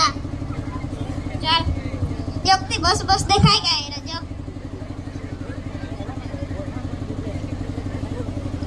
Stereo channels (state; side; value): identical; both; correlation 1.00